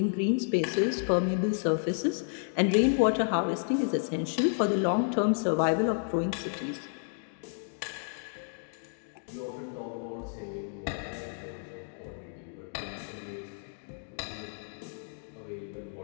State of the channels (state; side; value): silent; right; digital silence